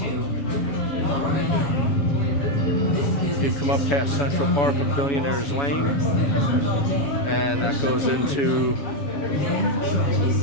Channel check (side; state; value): right; late; 7.1 ms